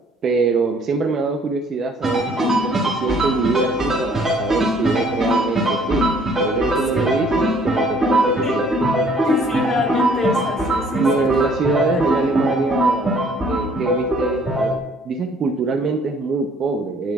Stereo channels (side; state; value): both; normal; correlation 0.60